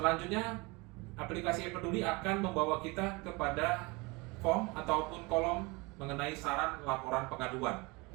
aplikasi e-Peduli akan membawa kita kepada form ataupun kolom mengenai saran laporan pengaduan.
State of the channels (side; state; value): left; quieter; 25.4 dB